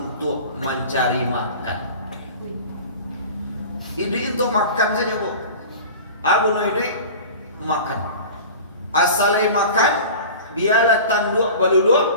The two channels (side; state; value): both; inverted; correlation -0.37